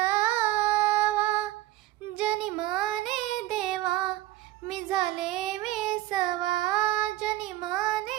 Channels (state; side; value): quieter; left; 16.4 dB